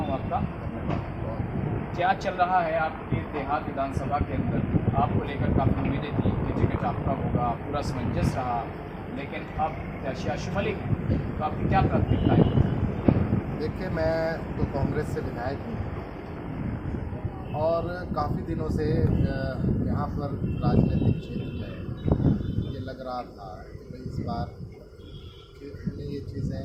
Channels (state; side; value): identical; both; correlation 1.00